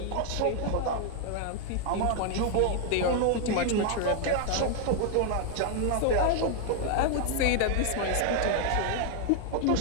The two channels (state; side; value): different; both; correlation 0.00